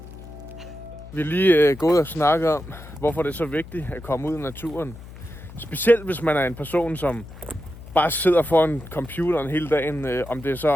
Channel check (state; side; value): noise; left; hum, 16 dB below the sound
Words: Vi er lige gået og snakket om, hvorfor det er så vigtigt at komme ud i naturen. Specielt hvis man er en person, som bare sidder foran computeren hele dagen, om det er så